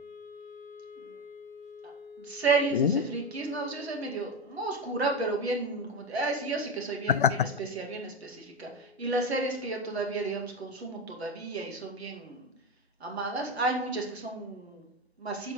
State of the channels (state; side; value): normal; both; correlation 0.16